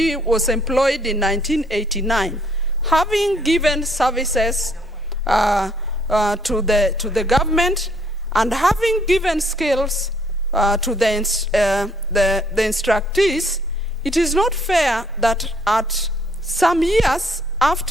was employed in 1989. Having given services to the government and having given skills to the instructees, it is not fair that at some years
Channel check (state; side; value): normal; both; correlation 0.65